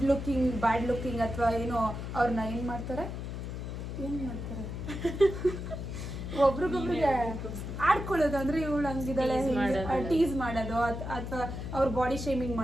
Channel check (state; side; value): noise; left; hum, 6 dB below the sound